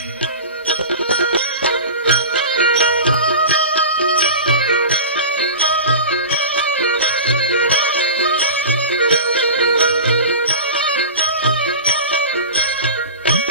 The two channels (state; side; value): inverted; both; correlation -0.31